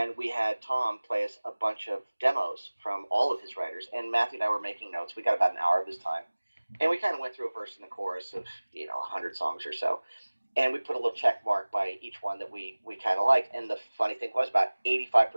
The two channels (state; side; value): inverted; both; correlation -1.00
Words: we had Tom play us a bunch of demos from all of his writers, and Matthew and I were making notes. We got about an hour of his time, and we kind of went through a verse and a chorus of 100 songs or so, and we put a little check mark by each one that we kind of liked. And the funny thing was, about